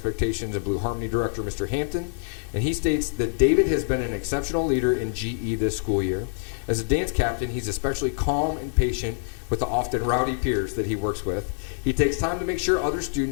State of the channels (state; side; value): silent; right; 61 dB below the other